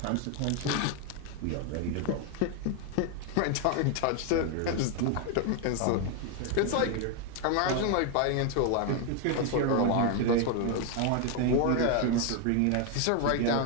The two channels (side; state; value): both; different; correlation 0.01